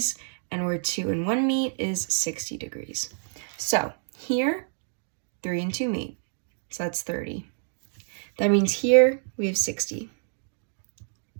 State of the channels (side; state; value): left; silent; digital silence